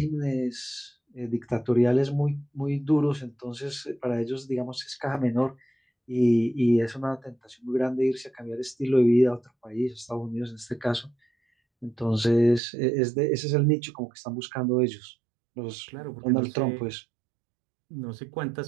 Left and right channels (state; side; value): drops out; left; at 12.6 s